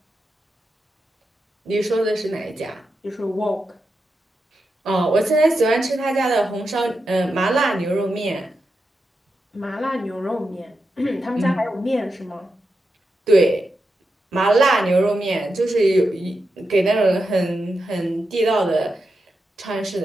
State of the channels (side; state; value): both; normal; correlation 0.88